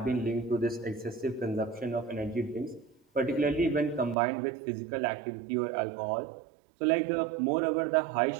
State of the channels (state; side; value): drops out; left; at 4.2 s